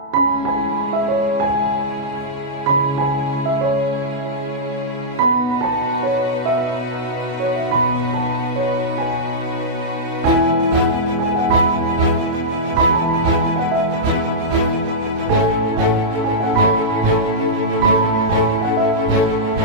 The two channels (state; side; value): late; left; 29 ms